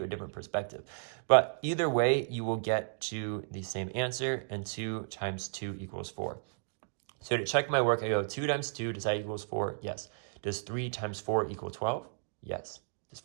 a different perspective. But either way, you will get to the same answer, and 2 times 2 equals 4. So to check my work, I go 2 times 2, does that equals 4? Yes. Does 3 times 4 equal 12? Yes. Does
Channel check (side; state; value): left; silent; digital silence